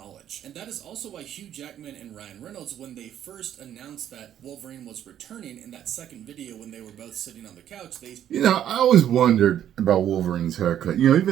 And that is also why Hugh Jackman and Ryan Reynolds, when they first announced that Wolverine was returning in that second video when they were both sitting on the couch, they... You know, I always wondered about Wolverine's haircut. You know,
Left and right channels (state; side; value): quieter; left; 10.6 dB